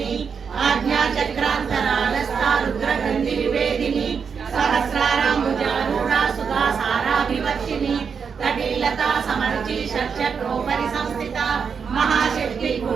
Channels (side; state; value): left; quieter; 6.2 dB